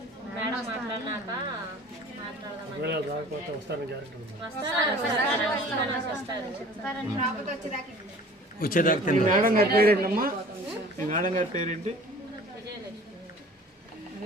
మేడం మాట్లాడినాక వచ్చేదాకా తింటారు. మేడం గారి పేరేంటమ్మా? మీ మేడం గారి పేరేంటి?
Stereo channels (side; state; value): both; normal; correlation 0.46